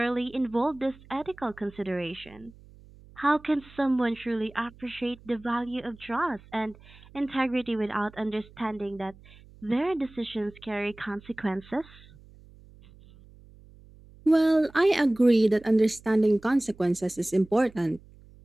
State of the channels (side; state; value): right; noise; hum, 23 dB below the sound